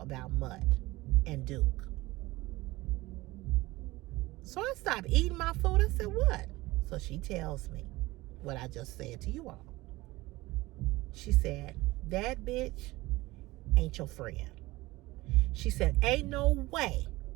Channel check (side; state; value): left; quieter; 19.8 dB